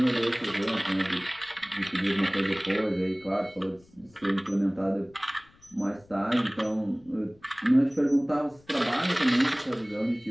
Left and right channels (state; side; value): noise; left; rumble, 29 dB below the sound